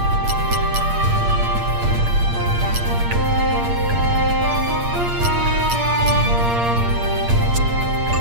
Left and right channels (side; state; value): left; late; 8.6 ms